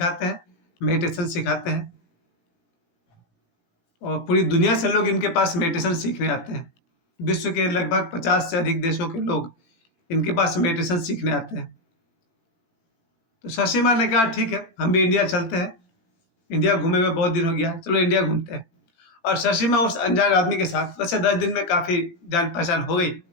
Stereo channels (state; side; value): late; right; 18 ms